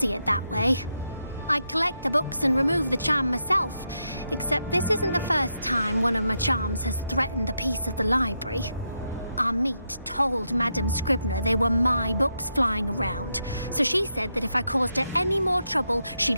it that way. I collect the books and remove the charm myself, except this isn't the first time one of my charms has threatened the peace of the library. Our meet told Madame Scribner they were my books flying around, so she said that if I caused her any more trouble,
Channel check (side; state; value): both; inverted; correlation -0.83